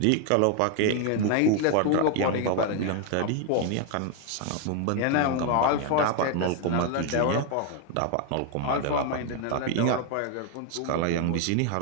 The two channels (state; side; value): different; both; correlation 0.01